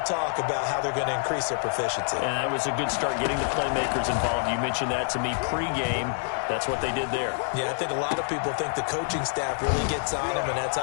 talk about how they're going to increase their proficiency. And that was a good start getting the playmakers involved. You mentioned that to me pregame. That's what they did there. Yeah, I think a lot of people think the coaching staff really gets on them, and that's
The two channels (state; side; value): silent; right; 59 dB below the other